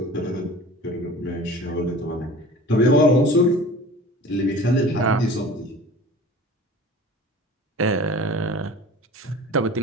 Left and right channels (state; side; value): normal; both; correlation 0.41